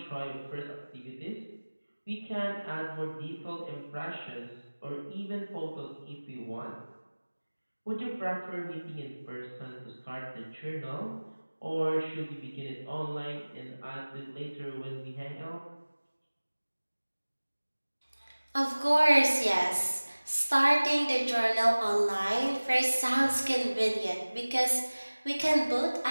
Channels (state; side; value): inverted; both; correlation -1.00